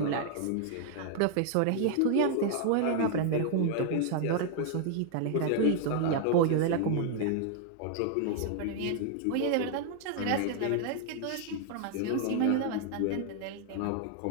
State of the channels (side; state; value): both; different; correlation 0.00